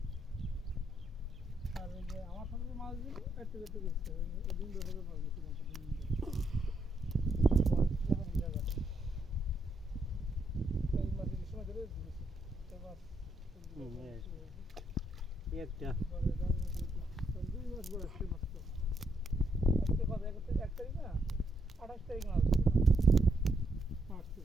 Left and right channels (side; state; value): both; normal; correlation 0.77